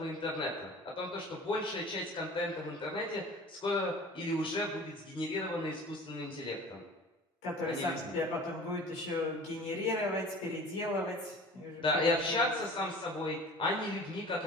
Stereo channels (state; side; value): normal; both; correlation 0.42